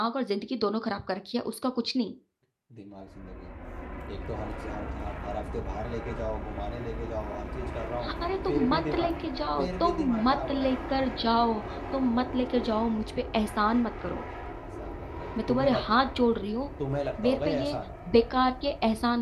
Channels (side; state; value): both; identical; correlation 1.00